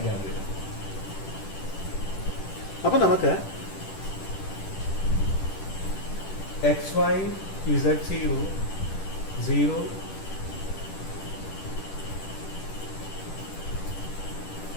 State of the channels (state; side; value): late; right; 10 ms